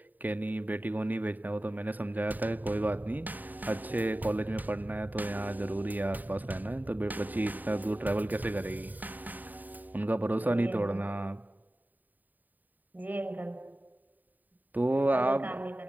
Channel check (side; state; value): left; late; 0.086 ms